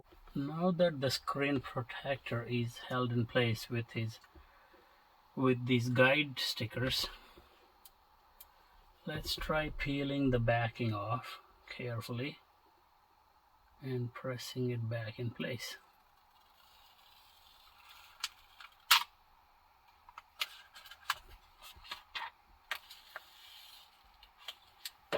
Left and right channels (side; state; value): both; identical; correlation 1.00